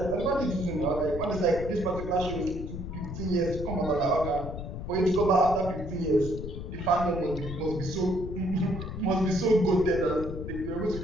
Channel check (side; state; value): left; noise; rumble, 8 dB below the sound